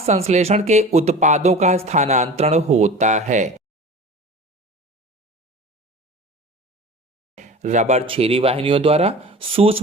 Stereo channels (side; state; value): both; normal; correlation 0.37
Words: के उत्पादों का स्थानांतरण होता है रबर छेरी वाहिनियों द्वारा,